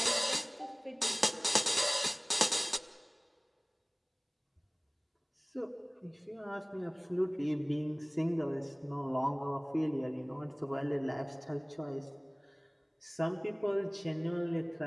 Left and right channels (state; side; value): identical; both; correlation 1.00